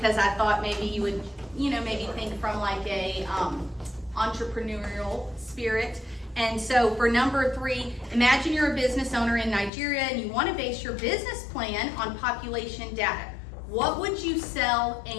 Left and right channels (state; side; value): drops out; right; at 9.7 s